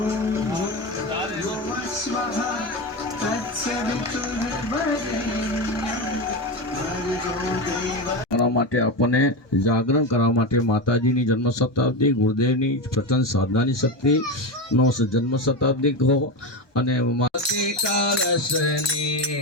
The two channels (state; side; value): late; right; 1.2 ms